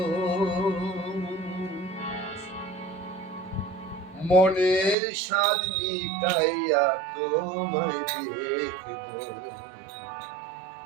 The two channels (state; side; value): drops out; left; at 5.0 s